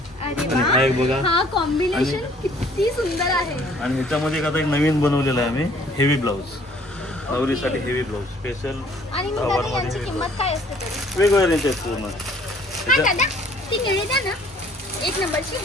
आणि हा एक बघा, हा कॉम्बिनेशन किती सुंदर आहे. आणि ह्याच्यामध्ये आता एक नवीन बनवलेला आहे आम्ही, हेवी ब्लाऊज, नवरीसाठी हेवी ब्लाऊज स्पेशल. आणि मग दादा यांची किंमत काय असते तरी? वेगवेगळ्या रेंज आहेत पूर्ण. हा दादा, ती निळी द्या ना, 1 नंबरची.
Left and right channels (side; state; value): both; normal; correlation 0.58